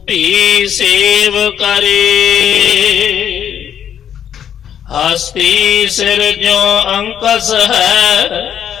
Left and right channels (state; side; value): quieter; right; 9.3 dB